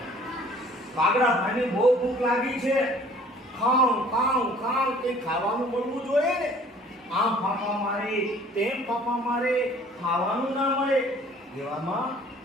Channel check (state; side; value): normal; both; correlation 0.53